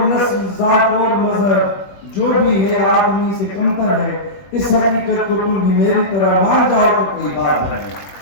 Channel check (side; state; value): right; late; 21 ms